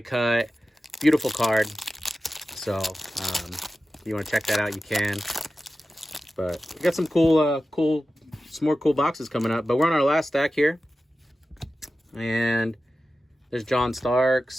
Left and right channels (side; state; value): both; normal; correlation 0.94